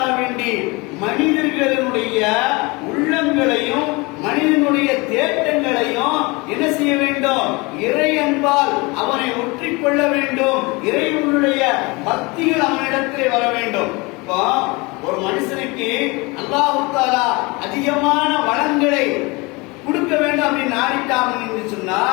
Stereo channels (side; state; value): right; quieter; 25.9 dB